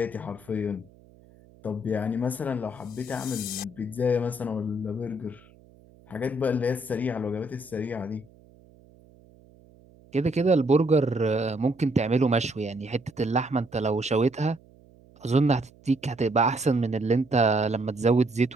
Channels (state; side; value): noise; right; hum, 26 dB below the sound